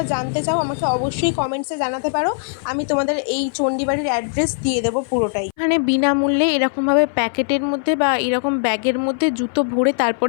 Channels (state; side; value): silent; right; 61 dB below the other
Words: জানতে চাও আমাকে অবশ্যই কমেন্টসে জানাতে পারো, আমি তোমাদের এই চণ্ডী বাড়ির অ্যাড্রেস দিয়ে দেবো পুরোটাই। এখানে বিনামূল্যে এরকমভাবে প্যাকেটের মধ্যে বা এরকম ব্যাগের মধ্যে জুতো ভরে